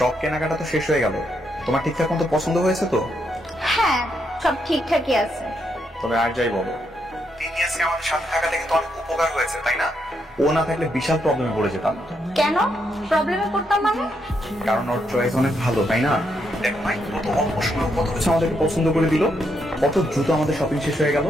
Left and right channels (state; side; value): normal; both; correlation 0.79